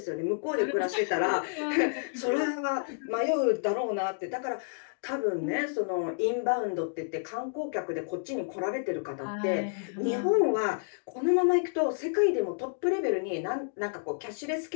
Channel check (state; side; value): silent; right; digital silence